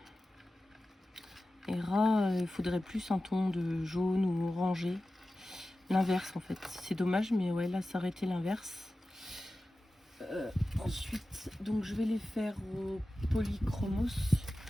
Hera, il faudrait plus un ton de jaune ou orangé. L'inverse en fait. C'est dommage, mais ouais, là, ça aurait été l'inverse. Ensuite, donc je vais les faire au polychromos.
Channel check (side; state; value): both; normal; correlation 0.95